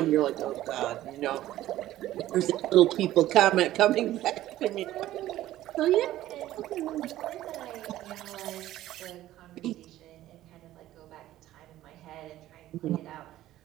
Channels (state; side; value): quieter; left; 14.3 dB